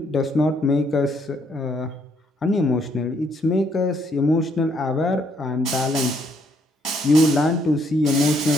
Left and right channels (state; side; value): normal; both; correlation 0.70